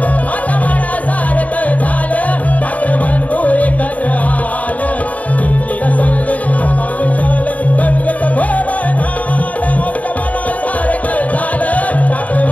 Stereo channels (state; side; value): late; right; 0.070 ms